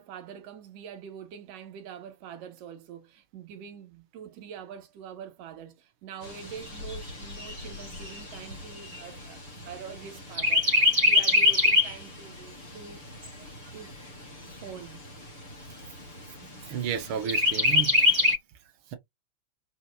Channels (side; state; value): left; late; 6.8 ms